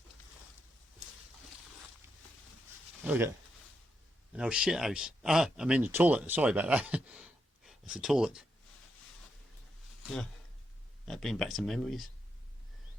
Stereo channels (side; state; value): both; normal; correlation 0.82